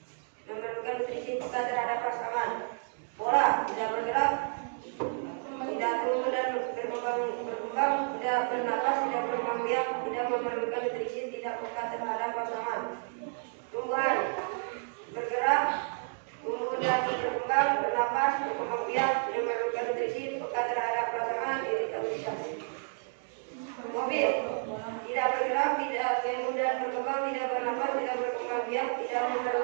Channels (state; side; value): silent; left; 57 dB below the other